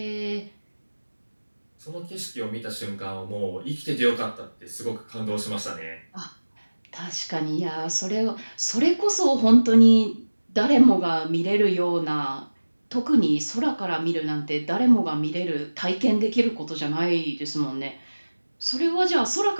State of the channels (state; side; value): inverted; both; correlation -1.00